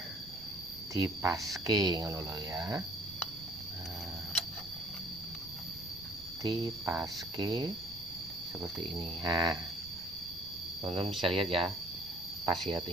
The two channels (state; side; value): noise; right; rumble, 18 dB below the sound